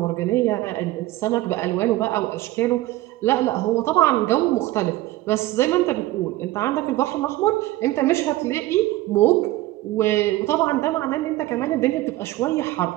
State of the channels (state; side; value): quieter; left; 16.8 dB